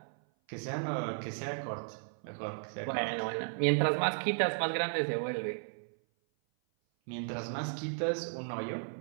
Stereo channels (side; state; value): left; silent; 55 dB below the other